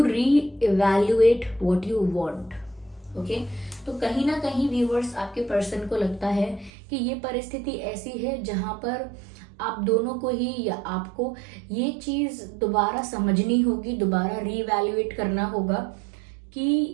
reevaluate what you want. Okay, तो कहीं ना कहीं व्यूअर्स, आपके पर्सन को लगता है कि ये परिस्थिति ऐसी है जहां पर आप दोनों को ही, या आपको ये चीज दोबारा समझनी होगी, दोबारा रीवैल्यूएट करना होगा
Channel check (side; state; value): left; drops out; at 6.7 s